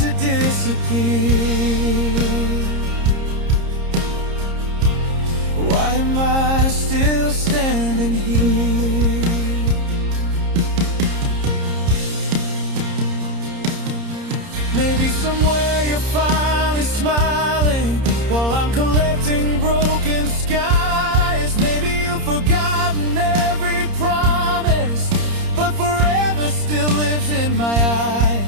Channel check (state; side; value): late; left; 30 ms